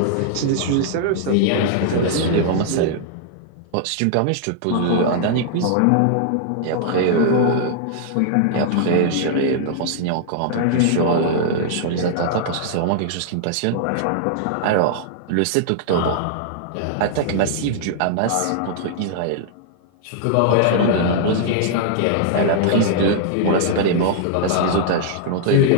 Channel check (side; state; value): both; different; correlation -0.01